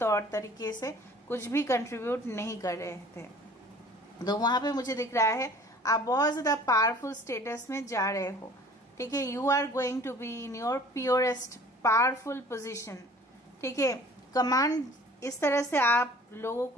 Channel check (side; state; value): both; normal; correlation 0.49